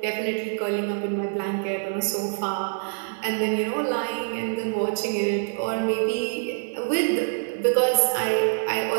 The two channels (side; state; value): left; silent; digital silence